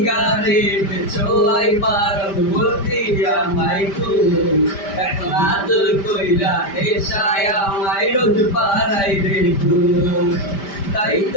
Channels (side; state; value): right; late; 5.1 ms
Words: ছোয়াই বারণ বলতি আমায় খুব, এখন আদর কইরা নেশায় আমায় রোজ পাড়াই রে ঘুম। তাই